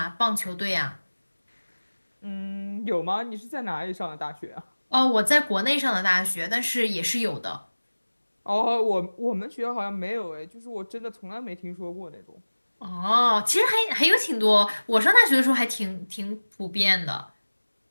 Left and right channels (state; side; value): inverted; both; correlation -1.00